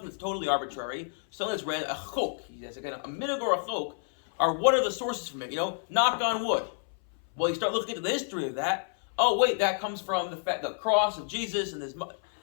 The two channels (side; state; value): right; silent; 58 dB below the other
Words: that's totally arbitrary, something that's random, a chok, again, a minig or a chok, are what are the sources from it? Knock on wood. Well, you start looking into the history of that. Oh wait, that comes from the cross of Jesus and